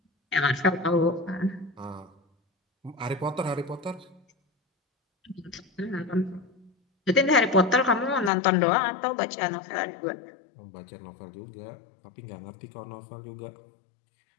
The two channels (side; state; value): right; drops out; at 8.3 s